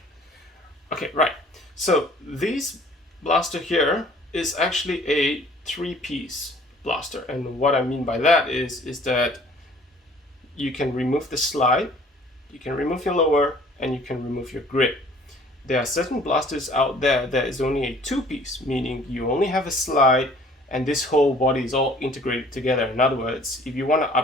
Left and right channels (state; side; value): normal; both; correlation 0.54